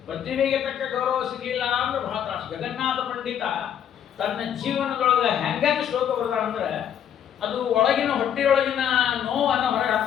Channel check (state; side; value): quieter; right; 9.3 dB